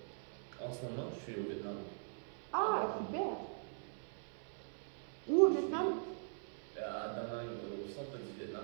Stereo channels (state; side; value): silent; left; 50 dB below the other